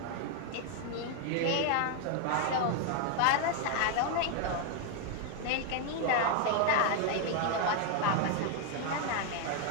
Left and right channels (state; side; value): different; both; correlation 0.00